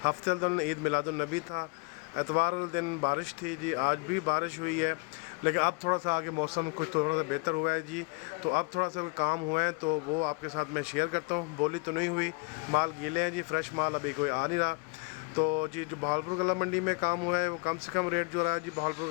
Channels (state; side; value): quieter; right; 31.4 dB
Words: हफ्ते वाले दिन ईद मिलादुन नबी था, एतवार वाले दिन बारिश थी जी। आज भी बारिश हुई है, लेकिन अब थोड़ा सा आगे मौसम कुछ थोड़ा सा बेहतर हुआ है जी। तो अब थोड़ा सा काम हुए हैं तो वो आपके साथ मैं शेयर करता हूँ। बोली तो नहीं हुई, माल गीले हैं जी, फ्रेश माल अभी कोई आ नहीं रहा। तो जी जो बहावलपुर गला मंडी में काम हुआ है वो कम से कम रेट जो रहा है जी बहावलपुर